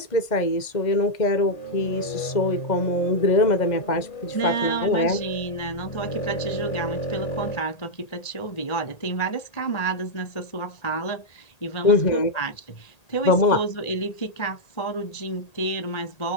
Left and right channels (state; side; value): late; right; 1.8 ms